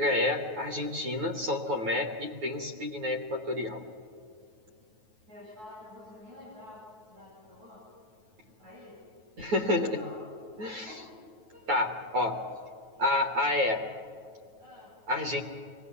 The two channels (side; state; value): left; late; 9.3 ms